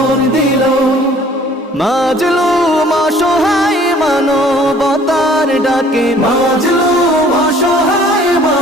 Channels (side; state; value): both; normal; correlation 0.54